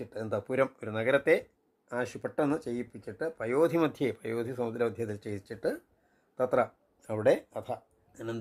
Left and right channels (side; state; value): both; identical; correlation 1.00